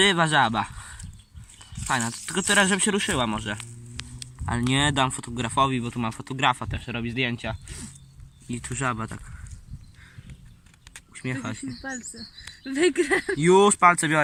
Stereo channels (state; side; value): identical; both; correlation 1.00